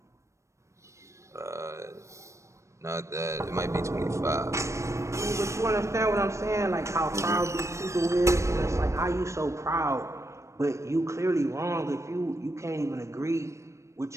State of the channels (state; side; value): late; left; 0.14 ms